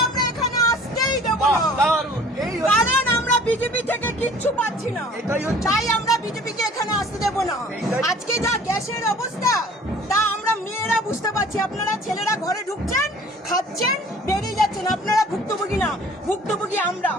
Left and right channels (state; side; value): normal; both; correlation 0.50